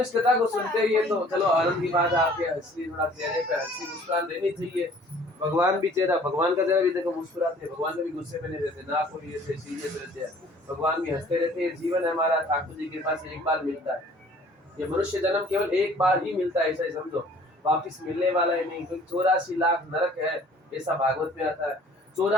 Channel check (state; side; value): normal; both; correlation 0.53